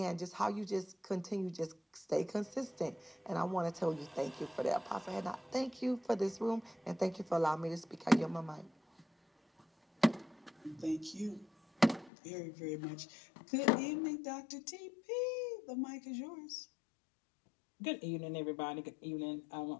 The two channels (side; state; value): right; drops out; at 12.1 s